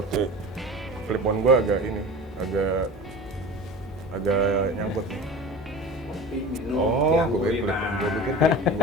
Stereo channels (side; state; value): both; normal; correlation 0.34